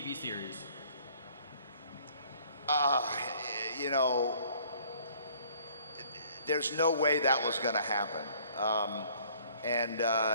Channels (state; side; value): inverted; both; correlation -0.57